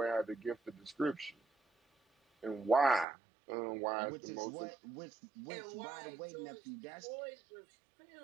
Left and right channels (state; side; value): drops out; left; at 3.1 s